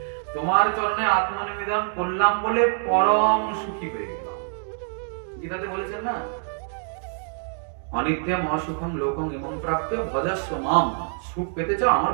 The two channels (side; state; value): left; silent; digital silence